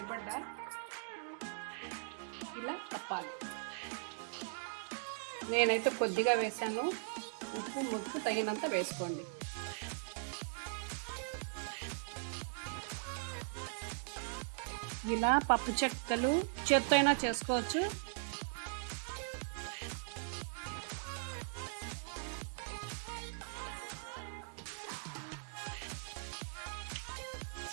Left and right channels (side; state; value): left; silent; digital silence